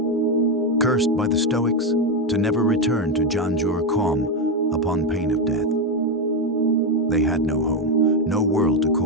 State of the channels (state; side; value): normal; both; correlation 0.08